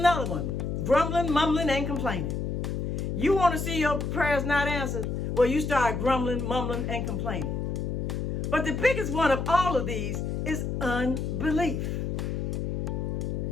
one, grumbling, mumbling, and complaining. You want to see your prayers not answered? Well, you start grumbling, mumbling, and complaining. But the biggest one of all of these is unbelief.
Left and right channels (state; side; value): noise; left; hum, 2 dB below the sound